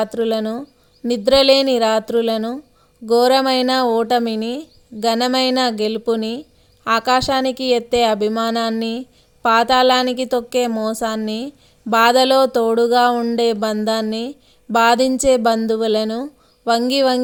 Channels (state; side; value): identical; both; correlation 1.00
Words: నిద్రలేని రాత్రులను, ఘోరమైన ఓటమిని, ఘనమైన గెలుపుని, ఆకాశానికి ఎత్తే అభిమానాన్ని, పాతాళానికి తొక్కే మోసాన్ని, బాధలో తోడుగా ఉండే బంధాన్ని, బాధించే బంధువులను, వంగి